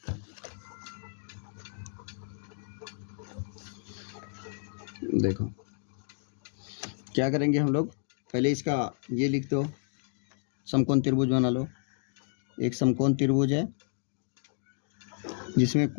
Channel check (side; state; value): right; silent; digital silence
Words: देखो क्या करेंगे हम लोग, पहले इसका ये लिख दो, समकोण त्रिभुज बना लो। एक समकोण त्रिभुज है जिसमें